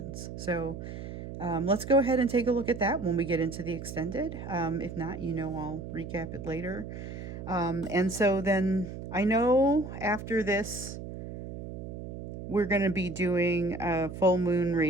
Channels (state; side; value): noise; right; hum, 9 dB below the sound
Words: So let's go ahead and take a look at that when we get into the extended. If not, I'll recap it later. And so then I know after this, we're going to be doing a full moon